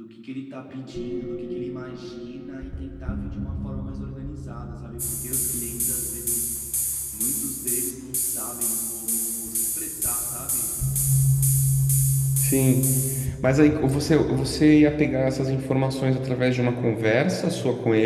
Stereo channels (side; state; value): both; identical; correlation 1.00